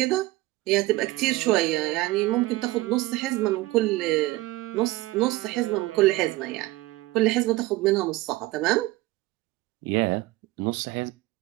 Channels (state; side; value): quieter; left; 18.9 dB